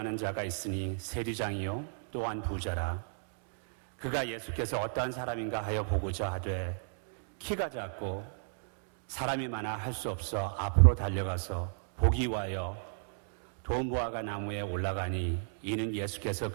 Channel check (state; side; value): silent; left; digital silence